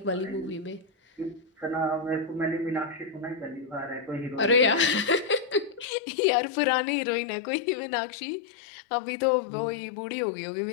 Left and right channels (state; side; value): drops out; right; at 5.9 s